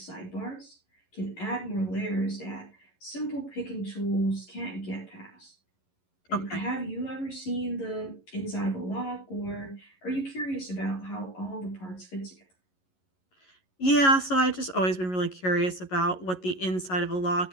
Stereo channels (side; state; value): right; late; 11 ms